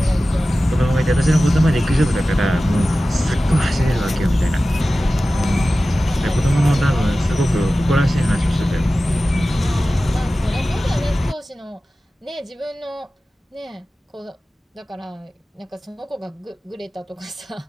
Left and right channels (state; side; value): normal; both; correlation 0.95